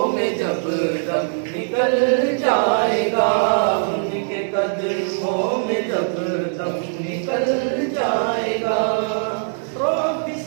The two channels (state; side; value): silent; left; 64 dB below the other